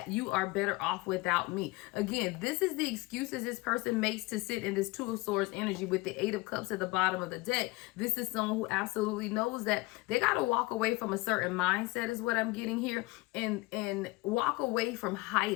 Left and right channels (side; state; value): right; quieter; 22.8 dB